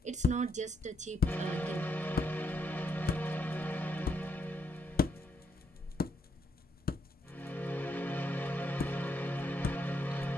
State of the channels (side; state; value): both; normal; correlation 0.78